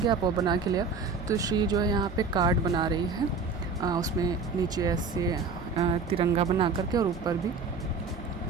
आप वो बना के ले आओ। तो श्री जो है यहाँ पे कार्ड बना रही है, उसमें नीचे ऐसे तिरंगा बना करके और ऊपर भी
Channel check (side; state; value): left; quieter; 4.6 dB